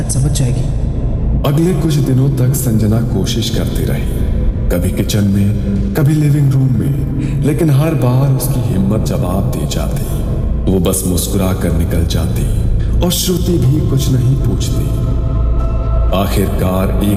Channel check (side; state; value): both; identical; correlation 1.00